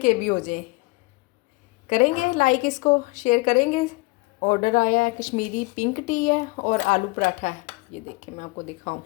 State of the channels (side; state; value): right; quieter; 25.2 dB